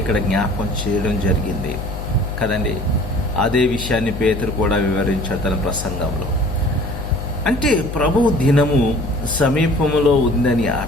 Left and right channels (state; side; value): noise; left; hum, 7 dB below the sound